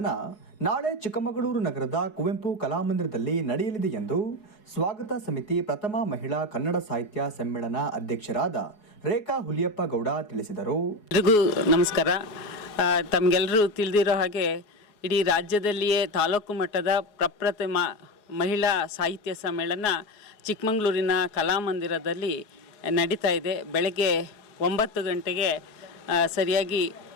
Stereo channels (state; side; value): late; right; 4.7 ms